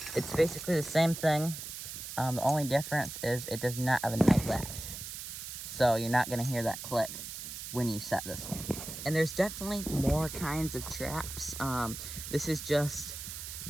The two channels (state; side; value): noise; right; hiss, 8 dB below the sound